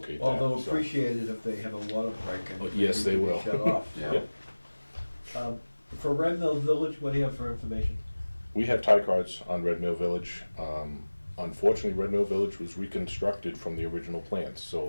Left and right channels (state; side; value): inverted; both; correlation -1.00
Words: Well, that. they'll so. appreciate it if they have a water break and. Oh, yes, they will. Shut off. Yeah. Yep. For Red Mill Village, what do you have for information? We have tie cards on Red Mill Village. Unfortunately, Red Mill Village was reconstructed from the original plans,